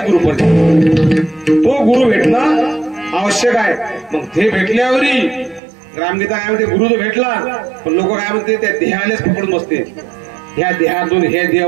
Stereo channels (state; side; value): drops out; left; at 5.6 s